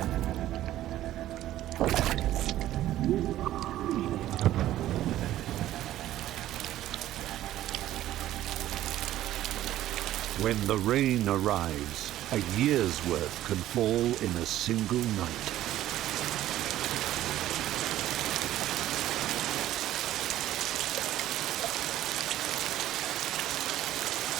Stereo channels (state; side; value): quieter; left; 13.6 dB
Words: When the rain arrives, a year's work can fall in a single night.